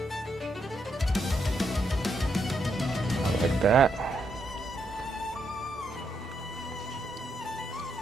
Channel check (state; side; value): normal; both; correlation 0.79